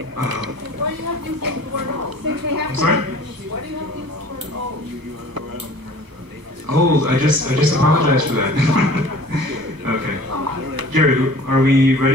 Why do you have to use the word old? Since we have I'm sorry? Why do you have to use the word old? Old, I just apologize for that. Okay. Gary, are we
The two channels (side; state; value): left; late; 1.0 ms